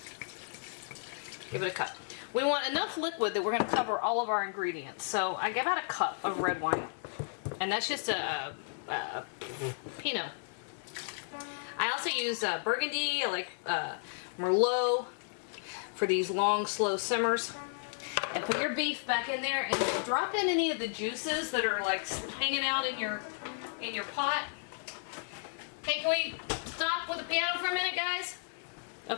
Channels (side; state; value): right; silent; digital silence